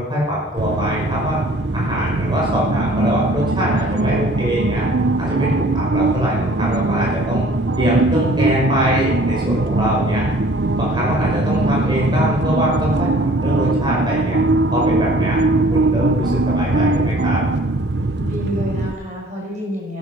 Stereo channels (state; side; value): normal; both; correlation 0.53